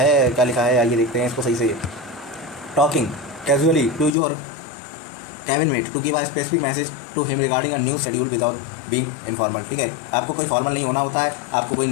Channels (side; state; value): right; drops out; at 4.1 s